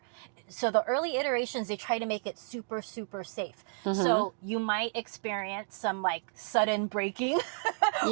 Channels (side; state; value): left; silent; digital silence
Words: so the early iterations, they try to make it super, super safe. So you might experience some like sudden braking